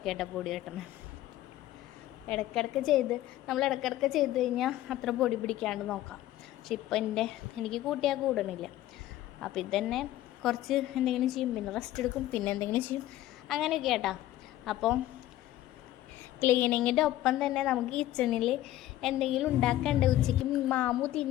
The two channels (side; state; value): right; quieter; 14.4 dB